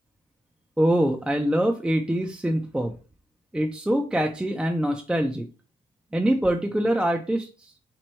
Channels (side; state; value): both; normal; correlation 0.93